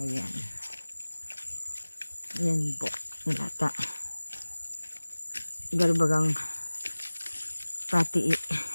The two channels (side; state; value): both; inverted; correlation -1.00